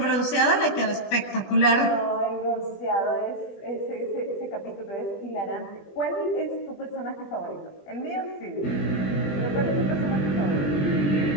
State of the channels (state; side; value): late; right; 20 ms